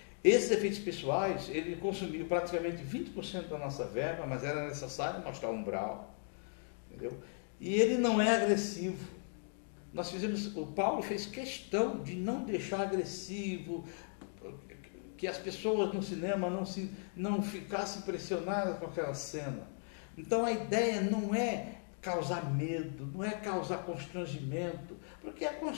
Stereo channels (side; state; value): right; silent; 53 dB below the other